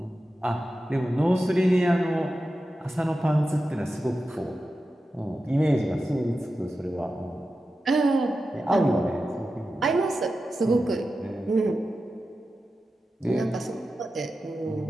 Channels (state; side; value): normal; both; correlation 0.92